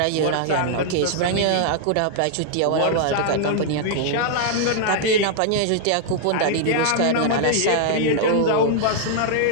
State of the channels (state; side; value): different; both; correlation -0.01